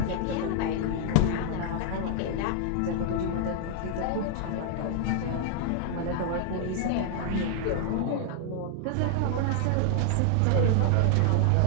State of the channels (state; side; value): different; both; correlation 0.00